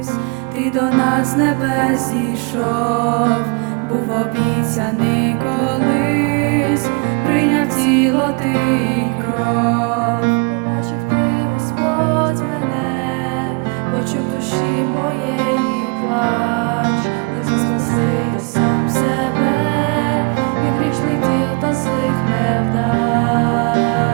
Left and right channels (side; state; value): left; quieter; 32.6 dB